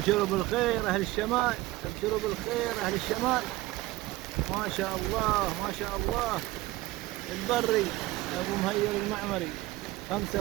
بالخير اهل الشمال، ابشروا بالخير اهل الشمال. ما شاء الله ما شاء الله. البري ابو مهير المعمري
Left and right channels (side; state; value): left; quieter; 18.5 dB